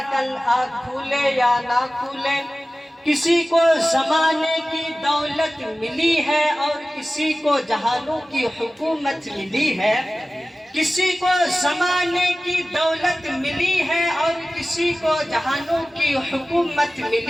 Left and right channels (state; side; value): normal; both; correlation 0.96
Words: کل آنکھ کھولے یا نہ کھولے۔ کسی کو زمانے کی دولت ملی ہے اور کسی کو جہانوں کی حکومت ملی ہے، کسی کو زمانے کی دولت ملی ہے اور کسی کو جہانوں کی حکومت